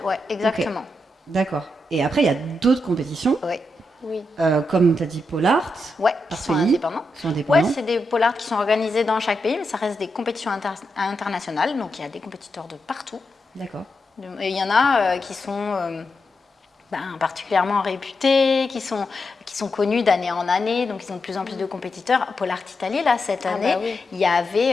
exactement. Okay. D'accord. Et après, il y a d'autres compétitions, comme tu as dit Pole Art, qui sont indépendants. Oui, c'est des Pole Art qui sont organisés dans chaque pays, mais ça reste des compétitions internationales, donc il y a des compétiteurs de partout. D'accord. Et il y en a qui sont particulièrement réputés, qui sont connus d'année en année, donc ils ont de plus en plus de compétiteurs. Pole Art Italie, là, cette année, il y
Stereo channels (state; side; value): normal; both; correlation 0.85